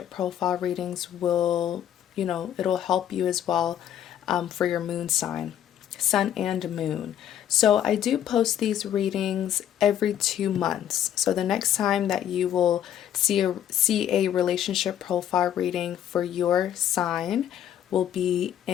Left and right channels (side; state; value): right; quieter; 10.4 dB